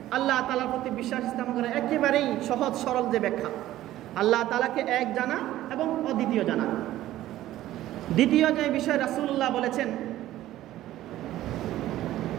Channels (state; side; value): quieter; left; 14.4 dB